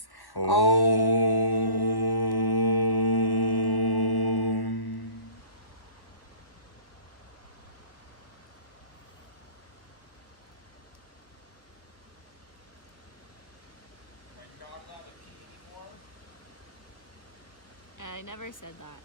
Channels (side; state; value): right; late; 1.1 ms